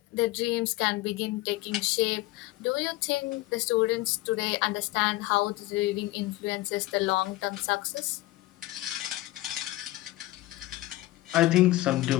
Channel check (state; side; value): quieter; right; 18.2 dB